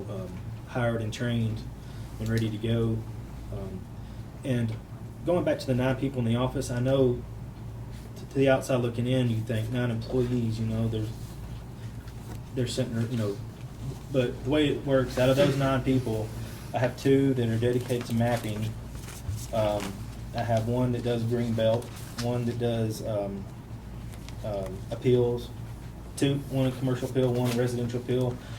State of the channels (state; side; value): identical; both; correlation 1.00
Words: hired and trained and ready to go. And going back to the 9 people in the office, I know to the outside looking in, you think 9 employees, you know, they're sitting, you know, but the way it works, out of those 9 people, I have 2 that are dedicated to mapping. I have 1 that does green belt, 1 that does appeals, 1 in commercial appeal, 1 in residential appeal,